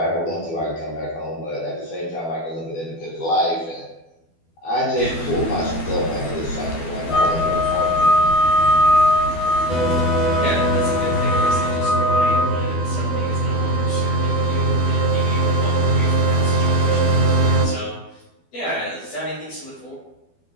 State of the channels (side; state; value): right; late; 12 ms